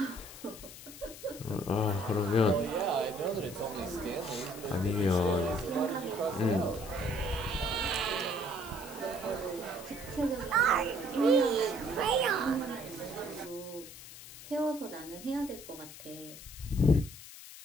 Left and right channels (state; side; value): noise; left; hiss, 15 dB below the sound